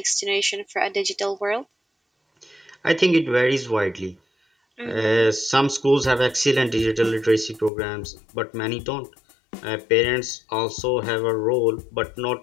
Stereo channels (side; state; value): right; drops out; at 7.7 s